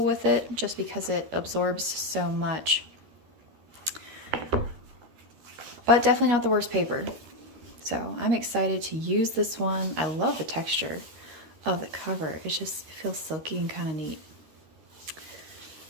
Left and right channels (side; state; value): left; late; 13 ms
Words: with it just because it absorbs so much. But definitely not the worst paper. So I'm excited to use this one. I love the texture of the cover. It feels silky and kind of neat.